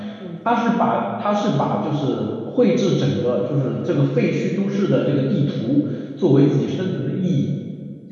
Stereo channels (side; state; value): both; identical; correlation 1.00